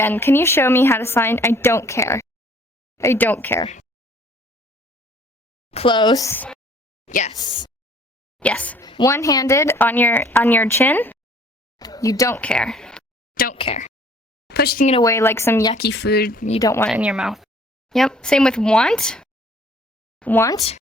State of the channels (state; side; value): normal; both; correlation 0.57